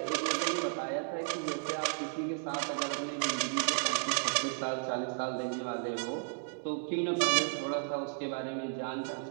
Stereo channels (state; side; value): silent; left; digital silence